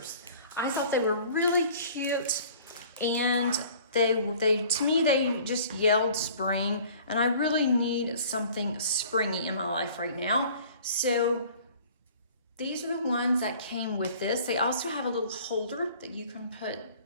I thought they were really cute, and they to me they just yelled spring, and I really need something springy in my life right now. So these are the ones that came with this. They also have a little holder that you can put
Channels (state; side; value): inverted; both; correlation -0.50